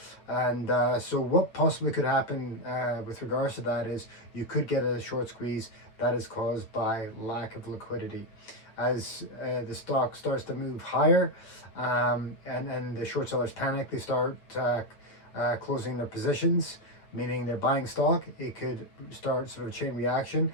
and so what possibly could happen with regards to that is you could get a short squeeze that is caused by lack of liquidity. As the stock starts to move higher and the short sellers panic, they start closing their positions, meaning they're buying stock. It could start sort of a chain reaction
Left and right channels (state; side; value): late; right; 8.7 ms